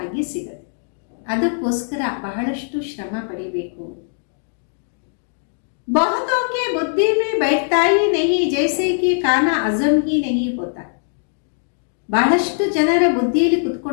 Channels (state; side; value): silent; right; digital silence